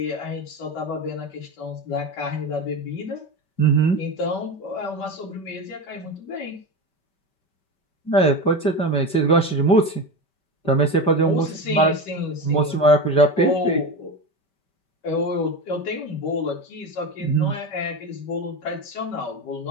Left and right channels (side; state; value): right; late; 5.2 ms